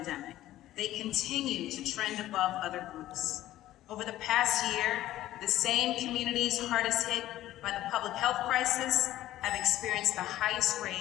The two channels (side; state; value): right; quieter; 14.4 dB